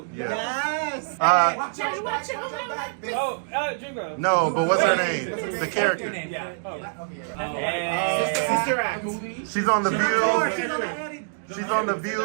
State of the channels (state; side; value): silent; left; digital silence